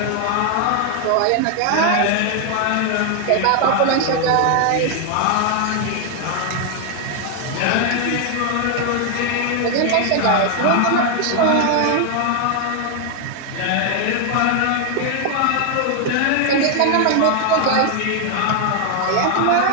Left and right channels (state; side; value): different; both; correlation 0.00